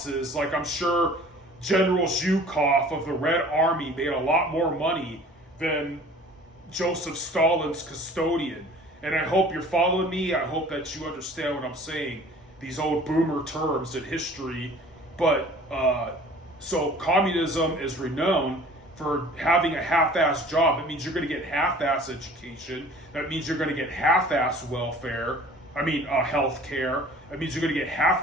Like, I'm sure General Zhukov of the Red Army made a lot more money than Joseph Stalin's custodian. And I hope you're following me. I hope that you understand what I'm saying, these old boomer terms in history. But, so communism is renowned for having a half-ass job. It means you're going to get half-ass education. That means you're going to get half-ass welfare. Health care. It means you're going to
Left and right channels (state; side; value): normal; both; correlation 0.47